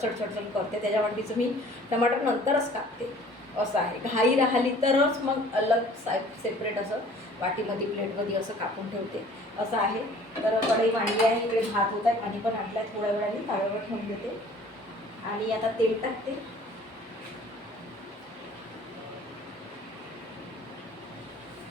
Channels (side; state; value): both; normal; correlation 0.51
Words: करते. त्याच्यावरतीचं मी टमाटर नंतरच कापते असं आहे. घाई राहिली तरच मग अलग सेपरेट असं वाटीमध्ये प्लेटमध्ये असं कापून ठेवते असं आहे. तर कढई मांडली आहे इकडे, भात होत आहे, पाणी पण आणलं आहे. थोड्या वेळाने ताव्यावर ठेवून देते आणि आता तेल टाकते.